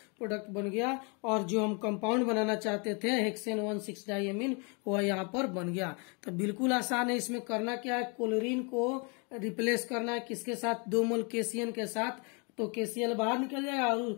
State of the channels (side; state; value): right; quieter; 33.6 dB